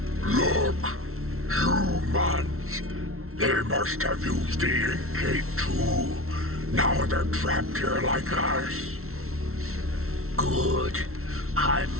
Look, humans. They must have used the ink gate too. Now they're trapped here like us. Good. I'm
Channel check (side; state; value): left; late; 0.62 ms